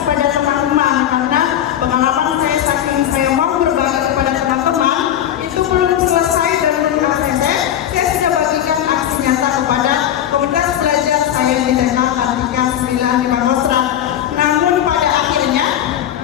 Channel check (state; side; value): quieter; right; 10.9 dB